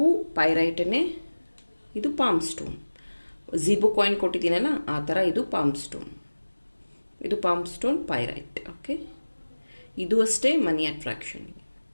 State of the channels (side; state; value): both; inverted; correlation -1.00